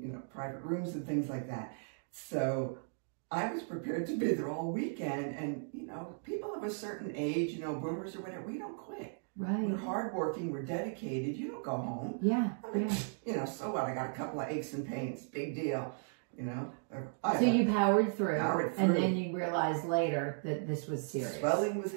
private rooms and things like that. So I was prepared to be there all weekend, and, people of a certain age, boomers or whatever, we don't quit. Right. We're hardworking, we're dedicated, you don't go home. Yeah, so what, I got a couple of aches and pains, big deal. So you powered through, and then you realized later that this was serious. Swelling was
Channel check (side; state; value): left; silent; digital silence